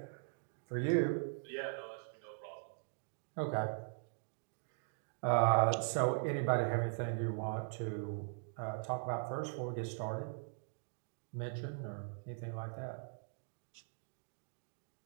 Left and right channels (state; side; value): silent; left; digital silence